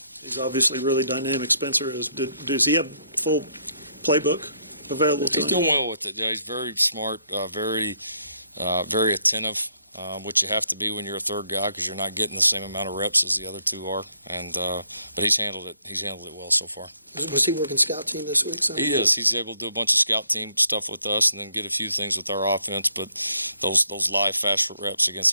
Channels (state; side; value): inverted; both; correlation -0.70